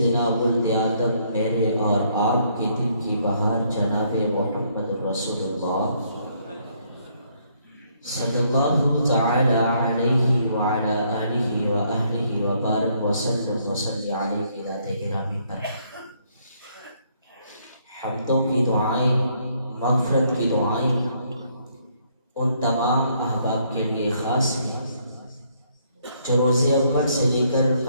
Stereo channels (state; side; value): inverted; both; correlation -0.69